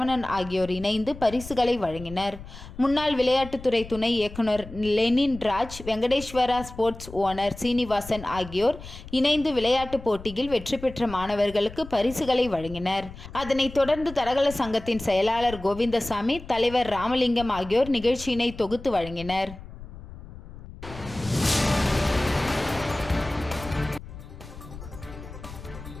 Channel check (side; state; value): left; noise; rumble, 14 dB below the sound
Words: ஆகியோர் இணைந்து பரிசுகளை வழங்கினர். முன்னாள் விளையாட்டுத்துறை துணை இயக்குனர் Lenin Raj, Venkateswara sports owner Srinivasan ஆகியோர் இணைந்து விளையாட்டுப் போட்டியில் வெற்றி பெற்ற மாணவர்களுக்கு பரிசுகளை வழங்கினர். அதனைத் தொடர்ந்து தடகள சங்கத்தின் செயலாளர் கோவிந்தசாமி, தலைவர் ராமலிங்கம் ஆகியோர் நிகழ்ச்சியினை தொகுத்து வழங்கினர்.